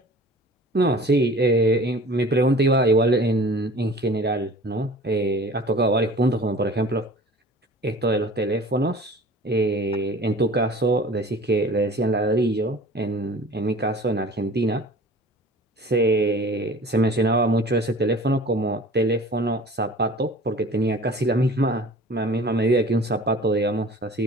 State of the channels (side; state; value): both; normal; correlation 0.44